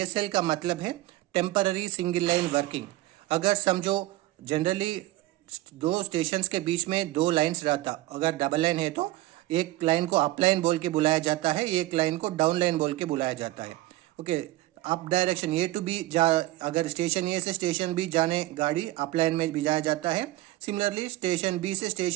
का मतलब है टेम्पररी सिंगल लाइन वर्किंग। अगर समझो जनरली दो स्टेशंस के बीच में दो लाइंस रहता, अगर डबल लाइन है तो एक लाइन को अप लाइन बोल के बुलाया जाता है, एक लाइन को डाउन लाइन बोल के बुलाया जाता है। Okay, up direction A to B अगर स्टेशन A से स्टेशन B जाने गाड़ी अप लाइन में भिजाया जाता है। सिमिलरली स्टेशन B से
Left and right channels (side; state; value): left; quieter; 17.3 dB